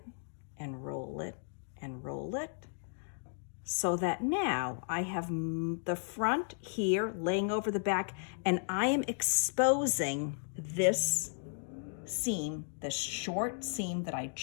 and roll it and roll it, so that now I have the front here laying over the back, and I am exposing this seam, this short seam that I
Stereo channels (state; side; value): silent; right; digital silence